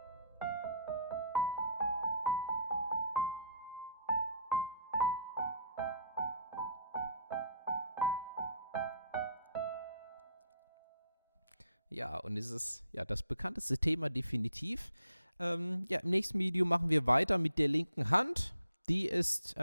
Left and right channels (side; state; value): both; inverted; correlation -0.64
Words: Ja, und es ist ja das bekannteste Thema definitiv. Ja, im nächsten Video machen wir weiter mit der linken Hand. Die ist